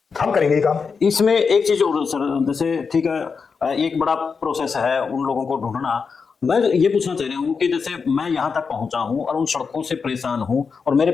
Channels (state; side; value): quieter; right; 5.4 dB